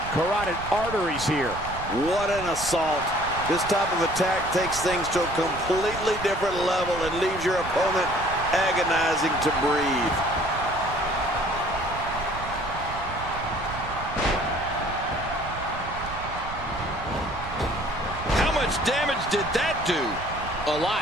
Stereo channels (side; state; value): right; noise; rumble, 11 dB below the sound